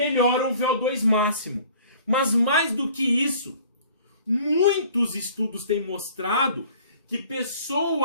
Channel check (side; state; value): both; inverted; correlation -0.51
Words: o VO2 máximo. Mas mais do que isso, muitos estudos têm mostrado que